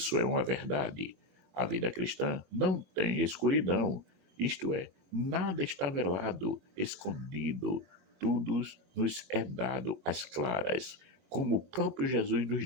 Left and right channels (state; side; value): late; left; 22 ms